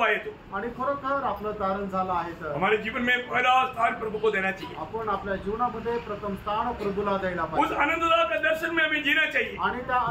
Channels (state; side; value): identical; both; correlation 1.00